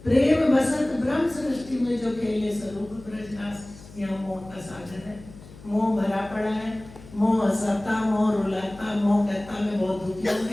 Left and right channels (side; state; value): left; noise; hum, 19 dB below the sound